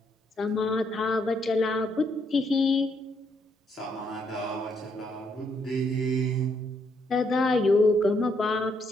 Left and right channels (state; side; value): normal; both; correlation 0.74